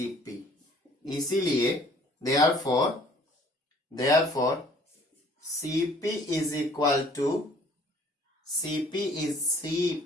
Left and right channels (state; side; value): normal; both; correlation 0.55